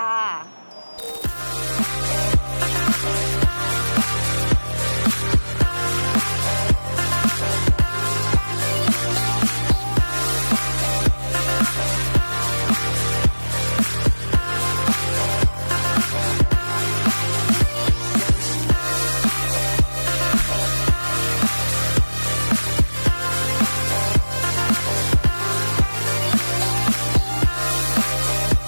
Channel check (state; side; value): inverted; both; correlation -1.00